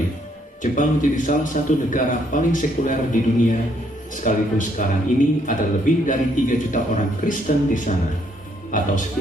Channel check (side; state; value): both; normal; correlation 0.70